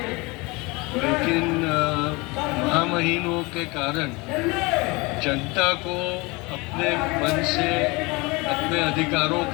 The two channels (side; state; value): right; quieter; 25.4 dB